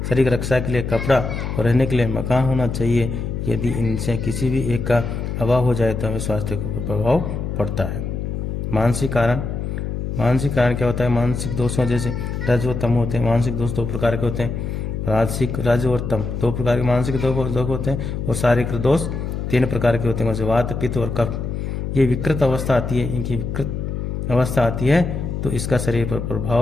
की रक्षा के लिए कपड़ा और रहने के लिए मकान होना चाहिए। यदि इनसे किसी भी एक का अभाव हो जाए तो हमें स्वास्थ्य को प्रभाव पड़ता है। मानसिक कारण क्या होता है? मानसिक दोषों जैसे रज व तम होते हैं। मानसिक दोष 2 प्रकार के होते हैं, रज और तम 2 प्रकार के मानसिक दोष होते हैं, और शारीरिक दोष 3 प्रकार के होते हैं, जैसे वात, पित्त और कफ। ये विकृत अवस्था आती है, इनकी विकृत अवस्था आती है तो इसका शरीर पर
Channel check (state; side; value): noise; left; hum, 4 dB below the sound